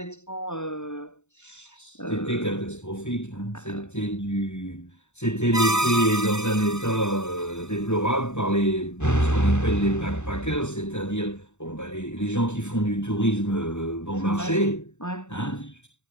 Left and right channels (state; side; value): late; right; 0.83 ms